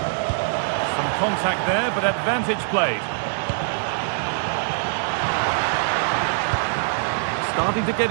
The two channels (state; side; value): silent; left; digital silence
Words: Some contact there, but advantage played. Starting to get